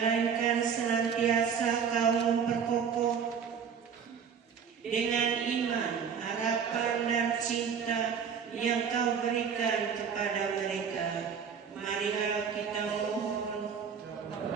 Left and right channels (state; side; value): quieter; left; 7.0 dB